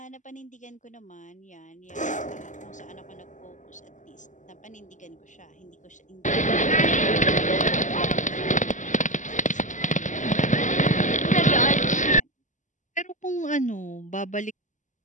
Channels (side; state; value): right; late; 0.36 ms